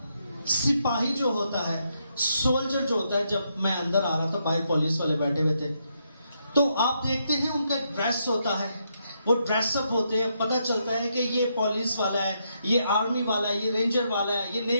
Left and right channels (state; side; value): inverted; both; correlation -0.78